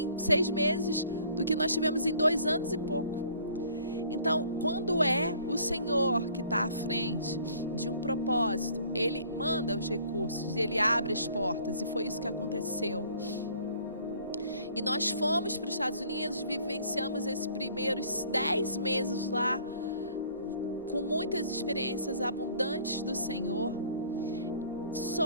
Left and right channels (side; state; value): both; inverted; correlation -0.56